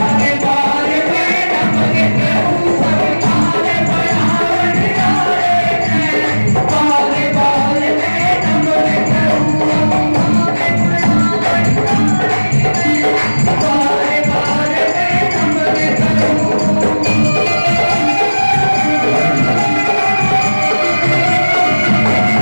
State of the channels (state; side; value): inverted; both; correlation -1.00